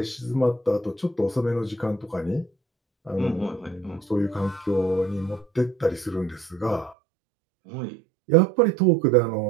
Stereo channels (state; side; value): drops out; left; at 7.0 s